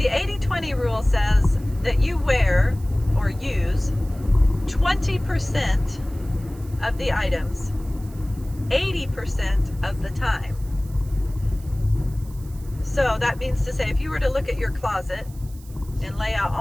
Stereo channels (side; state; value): right; noise; hiss, 24 dB below the sound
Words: 80-20 rule says that you wear or use 20% of the items 80% of the time. So that means to say, if you were to look at your closet and lay out